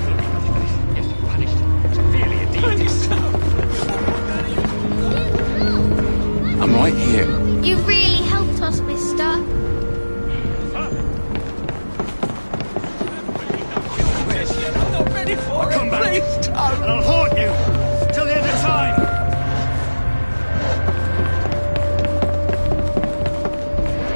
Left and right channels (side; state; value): both; inverted; correlation -1.00